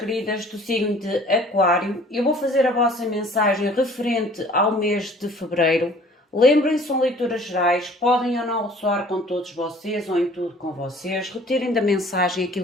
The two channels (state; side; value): normal; both; correlation 0.52